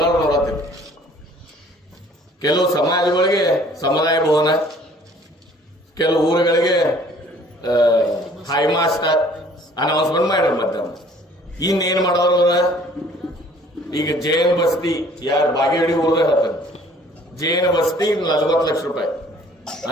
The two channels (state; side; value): normal; both; correlation 0.55